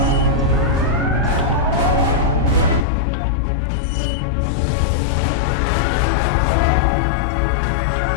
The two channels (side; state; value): right; drops out; at 2.9 s